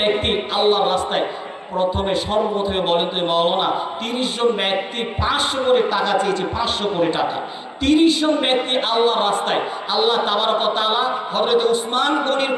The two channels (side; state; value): both; identical; correlation 1.00